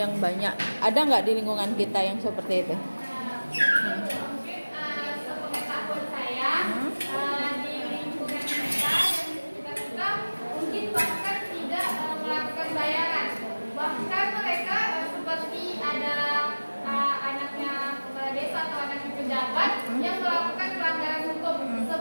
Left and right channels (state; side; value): inverted; both; correlation -1.00